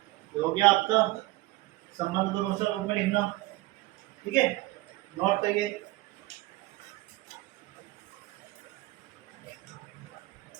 हो गया आपका संबंध को रोस्टर रूप में लिखना। ठीक है, नोट करिए।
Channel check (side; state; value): left; quieter; 19.6 dB